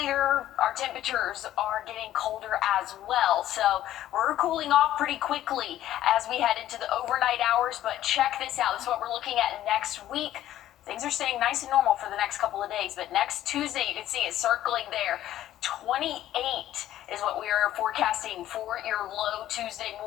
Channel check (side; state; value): right; quieter; 13.0 dB